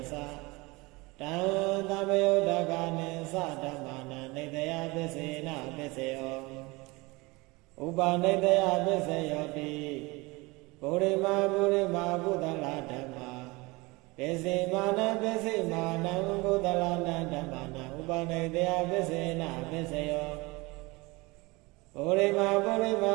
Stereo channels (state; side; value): quieter; left; 24.2 dB